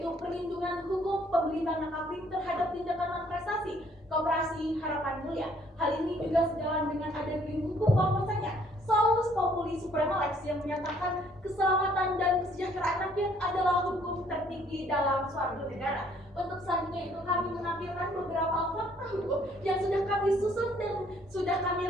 perlindungan hukum pembeli tanah kafling terhadap tindakan non-prestasi Koperasi Harapan Mulia. Hal ini juga sejalan dengan ada payung hukum bahwasanya Salus Populi Suprema Lex yang menyatakan keselamatan dan kesejahteraan rakyat adalah hukum tertinggi dalam suatu negara. Untuk selanjutnya itu kami menampilkan beberapa fakta hukum yang sudah kami susun dan sudah kami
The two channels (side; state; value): both; normal; correlation 0.63